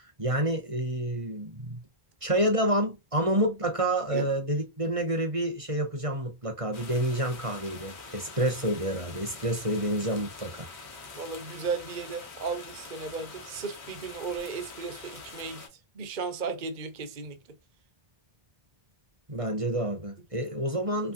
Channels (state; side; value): late; left; 1.6 ms